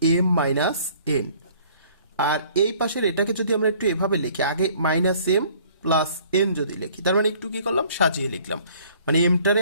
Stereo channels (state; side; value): inverted; both; correlation -0.56